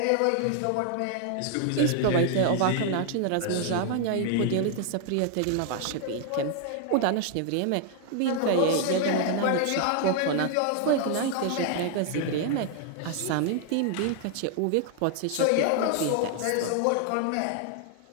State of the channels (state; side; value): different; both; correlation 0.00